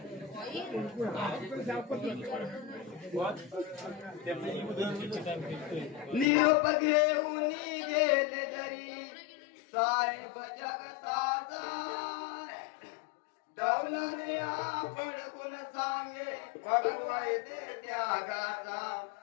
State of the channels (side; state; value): right; drops out; at 6.2 s